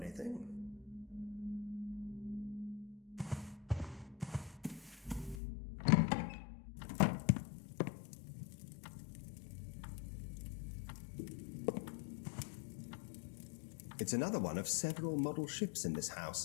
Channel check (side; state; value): right; drops out; at 5.4 s